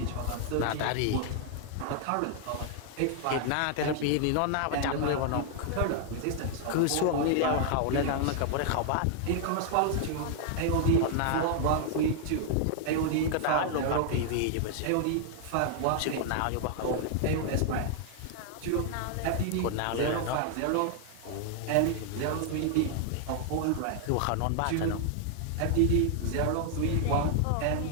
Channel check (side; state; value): both; different; correlation 0.00